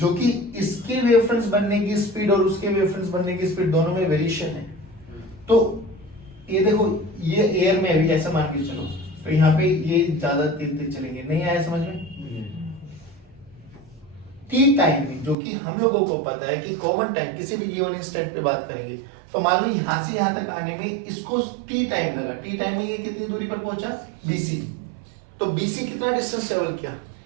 कि इसके वेव फ्रंट्स बनने की स्पीड और उसके वेव फ्रंट्स बनने की स्पीड दोनों में वेरिएशन है। तो ये देखो ये एयर में अभी ऐसा मान के चलो तो यहाँ पे ये ज्यादा तेज चलेंगे। नहीं आया समझ में? टी टाइम में जो कि हम लोगों को पता है कि कॉमन टाइम किसी भी गिवन इंस्टेंट पे बात करेंगे तो मान लो यहां से यहां तक आने में इसको टी टाइम लगा। टी टाइम में ये कितनी दूरी पर पहुंचा? BC। तो BC कितना डिस्टेंस ट्रेवल किया?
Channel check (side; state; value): left; drops out; at 15.4 s